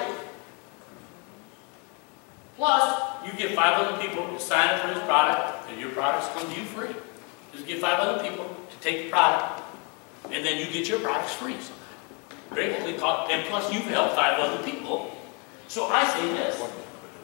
Plus, you get 500 people to sign up for this product, and your products come to you free. Just get 500 people to take the product. And and then you get your products free. Gratefully taught, and plus you've helped 5 other people. So I say this,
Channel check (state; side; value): quieter; right; 33.7 dB